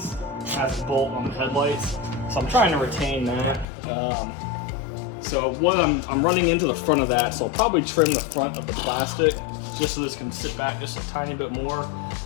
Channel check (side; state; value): right; drops out; at 3.7 s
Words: has a bolt on the headlights. So I'm trying to retain that. so what I'm running into the front of that, so I'll probably trim the front of the plastic just so this can sit back just a tiny bit more.